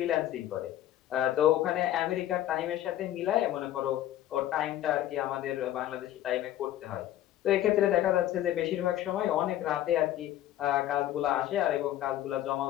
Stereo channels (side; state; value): right; quieter; 12.9 dB